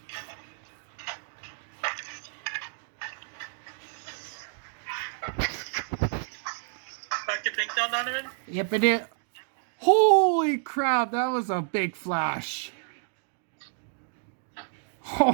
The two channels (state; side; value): silent; left; digital silence